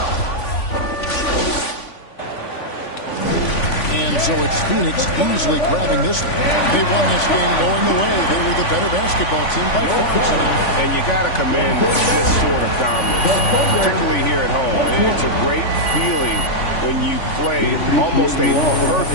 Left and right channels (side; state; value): right; late; 3.5 ms